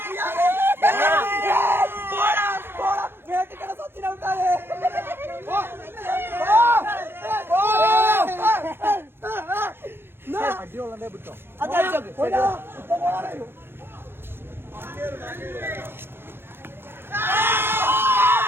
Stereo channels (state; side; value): late; left; 0.11 ms